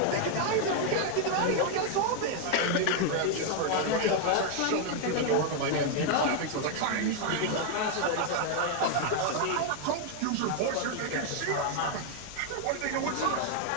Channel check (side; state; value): both; different; correlation 0.00